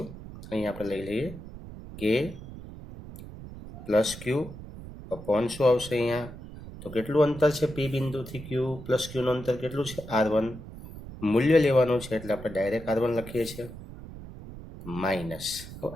અહીં આપણે લઈ લઈએ કે પ્લસ ક્યુ અપોન શું આવશે અહીંયા? તો કેટલું અંતર છે પી બિંદુથી ક્યુ પ્લસ ક્યુનું અંતર કેટલું છે? R1. મૂલ્ય લેવાનું છે એટલે આપણે ડાયરેક્ટ R1 લખીએ છીએ. માઇનસ, તો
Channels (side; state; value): right; noise; rumble, 13 dB below the sound